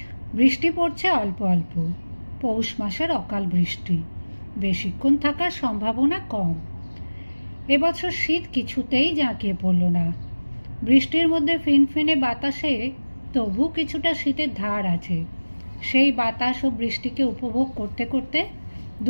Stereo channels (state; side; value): inverted; both; correlation -1.00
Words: বৃষ্টি পড়ছে অল্প অল্প, পৌষ মাসের অকাল বৃষ্টি, বেশিক্ষণ থাকার সম্ভাবনা কম। এবছর শীত কিছুতেই জাঁকিয়ে পড়ল না। বৃষ্টির মধ্যে ফিনফিনে বাতাসে তবু কিছুটা শীতের ধার আছে। সেই বাতাস ও বৃষ্টিকে উপভোগ করতে করতে